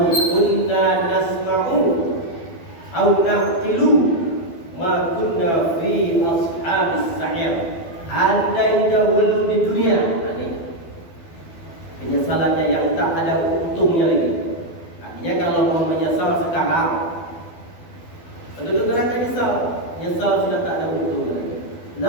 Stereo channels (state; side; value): late; right; 12 ms